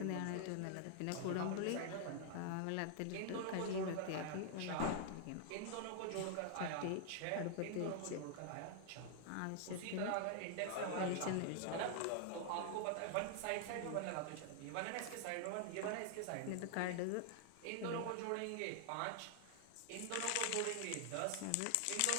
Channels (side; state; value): both; different; correlation 0.00